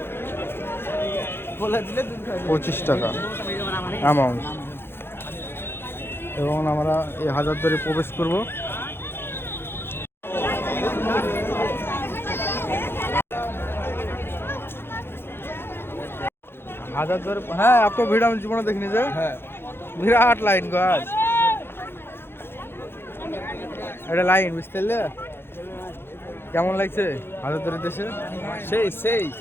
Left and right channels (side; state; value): right; late; 0.11 ms